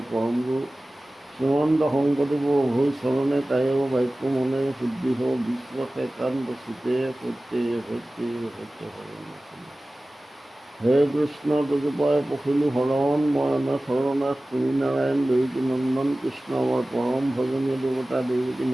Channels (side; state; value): both; normal; correlation 0.97